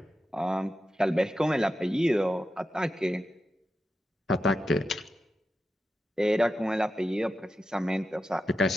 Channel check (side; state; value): both; normal; correlation 0.89